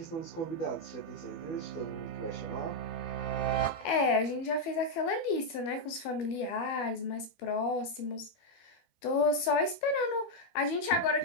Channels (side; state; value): right; late; 13 ms